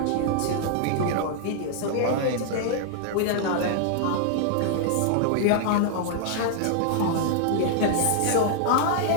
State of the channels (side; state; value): both; different; correlation -0.01